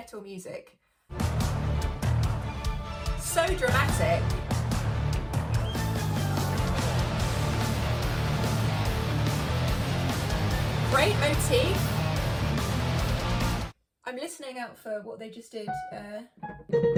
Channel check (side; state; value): both; identical; correlation 1.00